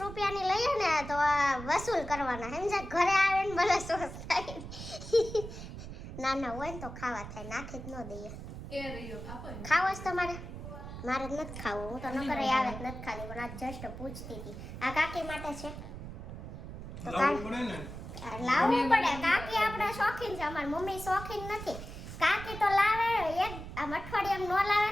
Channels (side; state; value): right; noise; rumble, 10 dB below the sound